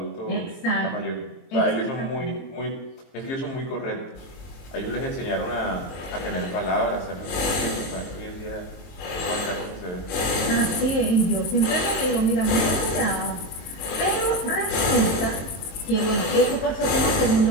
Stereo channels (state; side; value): late; right; 22 ms